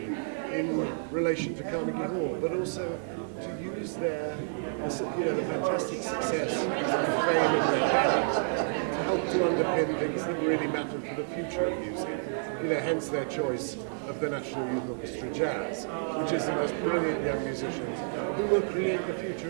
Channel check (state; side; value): silent; left; digital silence